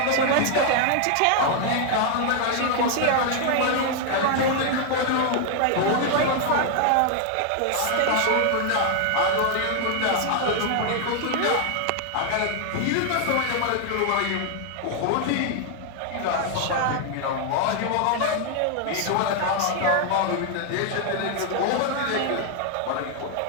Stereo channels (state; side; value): different; both; correlation 0.00